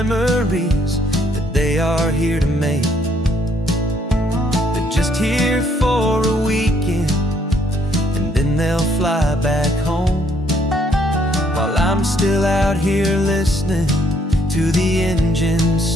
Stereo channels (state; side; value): normal; both; correlation 0.67